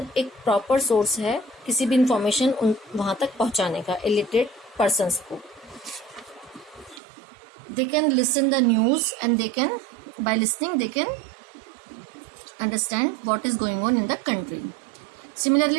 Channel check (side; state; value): left; drops out; at 7.0 s